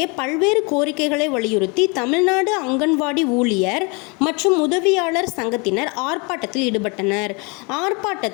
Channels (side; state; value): right; quieter; 30.5 dB